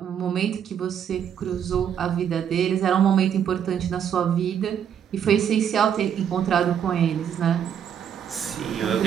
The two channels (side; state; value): left; quieter; 8.7 dB